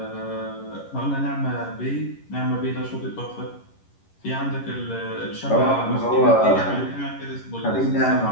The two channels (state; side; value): late; right; 11 ms